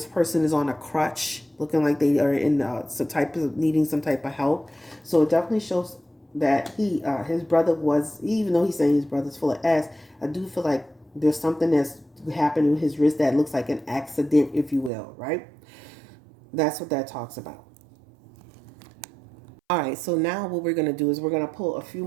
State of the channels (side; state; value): left; drops out; at 14.9 s